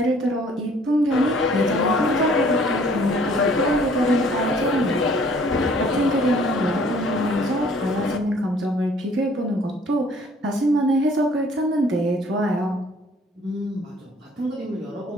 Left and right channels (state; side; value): normal; both; correlation 0.57